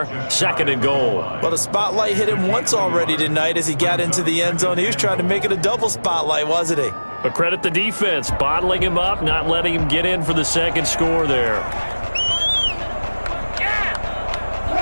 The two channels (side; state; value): both; inverted; correlation -1.00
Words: 2nd and goal. Well, the spotlight hit him once already tonight as he got into the end zone. He was trying to make it a double spotlight, wasn't he? But credit the defense, bottling him up, not letting him get in for the second score there.